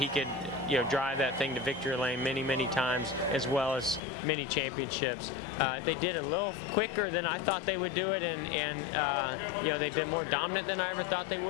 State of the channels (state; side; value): drops out; right; at 4.0 s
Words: could, you know, drive that thing to victory lane many, many times, as well as many championships. They did it a little quicker than I thought they would do it, and you know, they've been more dominant than I ever thought they